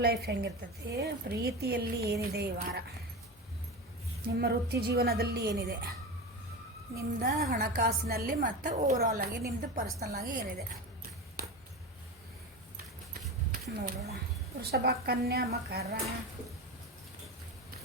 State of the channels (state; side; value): normal; both; correlation 0.24